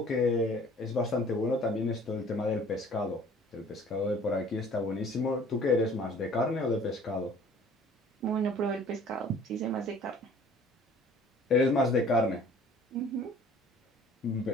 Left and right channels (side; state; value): both; normal; correlation 0.51